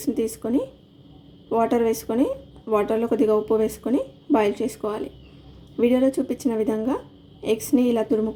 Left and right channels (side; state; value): both; identical; correlation 1.00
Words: తీసుకొని వాటర్ వేసుకొని వాటర్లో కొద్దిగా ఉప్పు వేసుకొని బాయిల్ చేసుకోవాలి. వీడియోలో చూపించిన విధంగా ఎగ్స్ని ఇలా